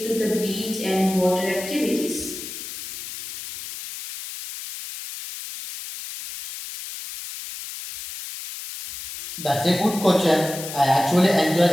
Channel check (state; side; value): noise; left; hiss, 10 dB below the sound